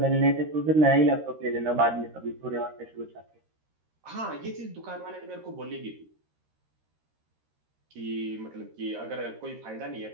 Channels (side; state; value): left; late; 13 ms